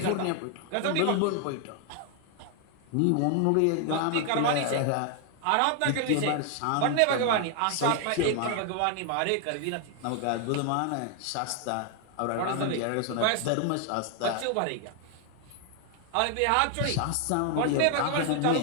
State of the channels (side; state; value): both; different; correlation 0.00